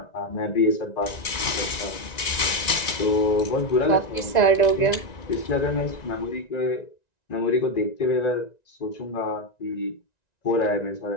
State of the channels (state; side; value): late; right; 1.9 ms